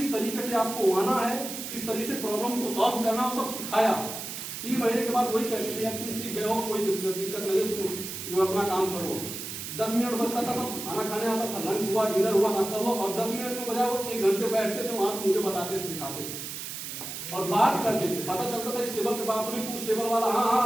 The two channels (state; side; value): noise; right; hiss, 7 dB below the sound